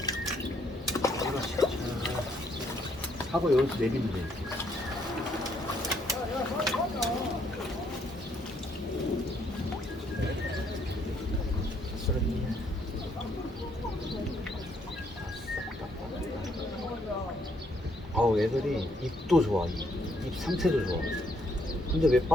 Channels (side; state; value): both; normal; correlation 0.70